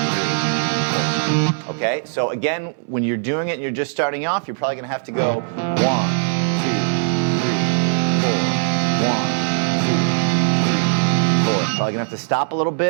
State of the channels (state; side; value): silent; left; 64 dB below the other